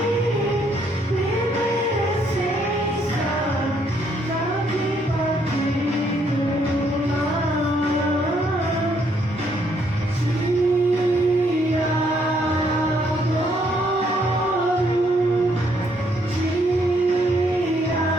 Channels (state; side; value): normal; both; correlation 0.70